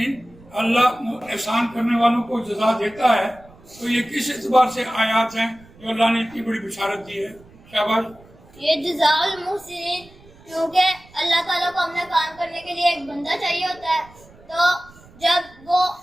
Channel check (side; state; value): right; noise; rumble, 25 dB below the sound